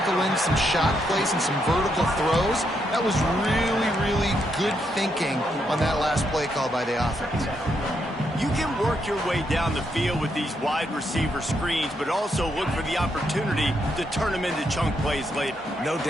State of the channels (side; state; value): both; normal; correlation 0.79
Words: in some shot plays and some vertical throws. That was really, really good thinking on that last play call by the offense. You can work your way down the field with these wide receiver screens, but also look for the opportunity to turn them into chunk plays later. No